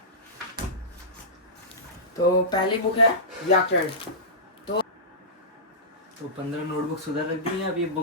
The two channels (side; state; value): both; normal; correlation -0.18